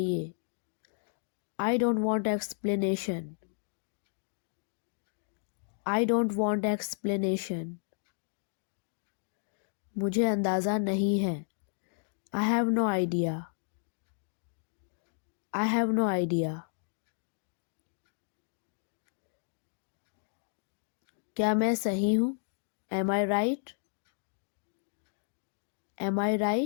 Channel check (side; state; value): right; silent; digital silence